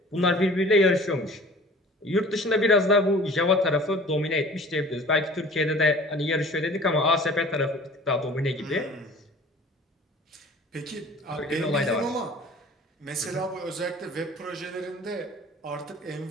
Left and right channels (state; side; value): normal; both; correlation 0.46